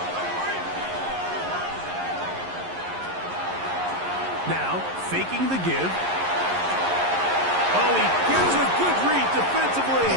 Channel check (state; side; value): late; left; 11 ms